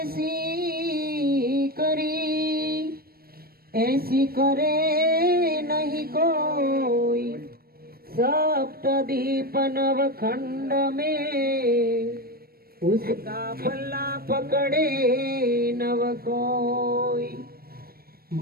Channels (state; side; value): late; left; 0.44 ms